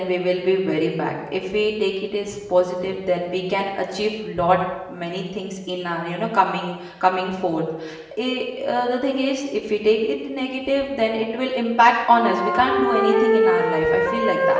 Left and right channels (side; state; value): both; identical; correlation 1.00